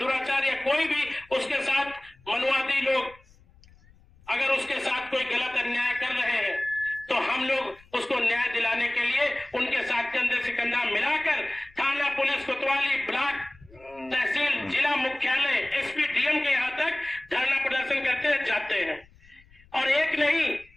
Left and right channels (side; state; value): left; noise; rumble, 28 dB below the sound